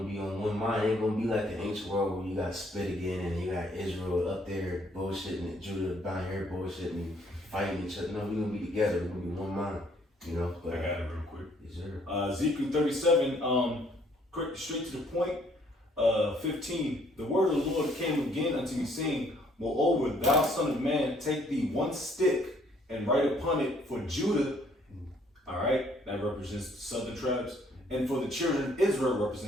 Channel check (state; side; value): normal; both; correlation 0.64